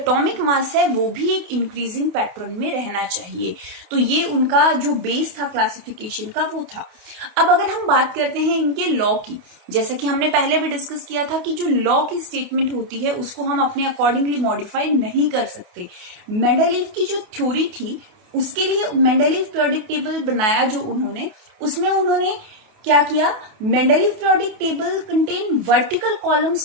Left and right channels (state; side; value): late; left; 28 ms